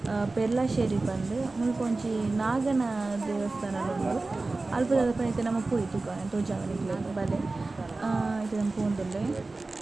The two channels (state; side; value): quieter; left; 3.4 dB